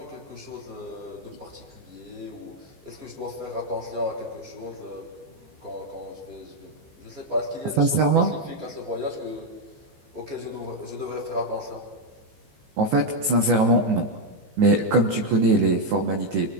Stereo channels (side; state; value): left; late; 15 ms